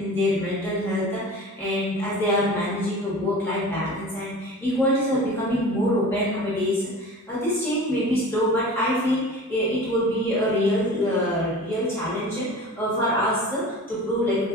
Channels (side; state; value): both; normal; correlation 0.38